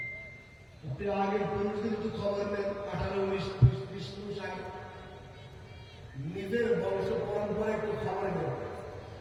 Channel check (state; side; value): identical; both; correlation 1.00